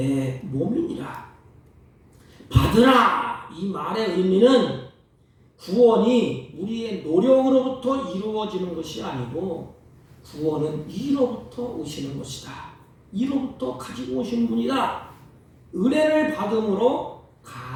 몸이니라. 받으라. 이 말의 의미는 구원이 우리의 노력으로부터 이루어지는 것이 아니고 구원은 이로부터 오시는 것이다. 이로부터 가지고 오신 분이다. 은혜를 받음으로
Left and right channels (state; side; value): identical; both; correlation 1.00